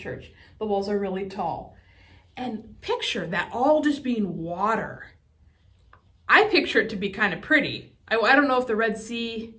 the walls are really tall. And picture that all just being water. I picture it to be kind of pretty. I don't know if the Red Sea,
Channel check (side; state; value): both; identical; correlation 1.00